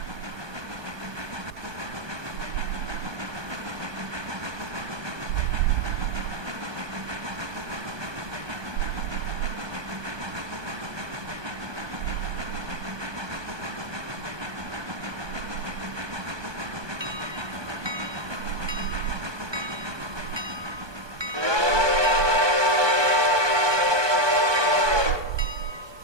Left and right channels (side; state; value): left; late; 1.2 ms